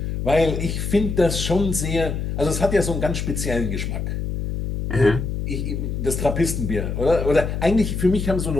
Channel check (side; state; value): left; noise; hum, 3 dB below the sound